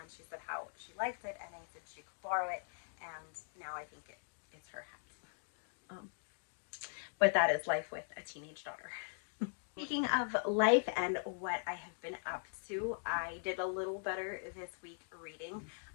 she said how she liked it, and I said she could borrow it, and now I think it's her hat. But that is life with a teenage daughter. Speaking of life and what I have been up to, I did a little better this week reading,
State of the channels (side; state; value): right; silent; digital silence